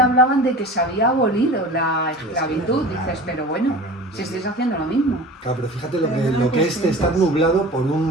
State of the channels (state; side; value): normal; both; correlation 0.38